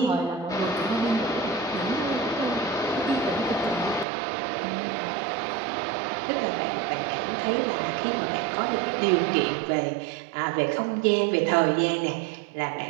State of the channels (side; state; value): left; drops out; at 4.0 s